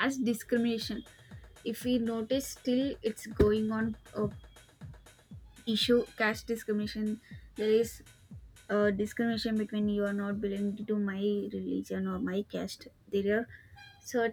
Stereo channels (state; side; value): identical; both; correlation 1.00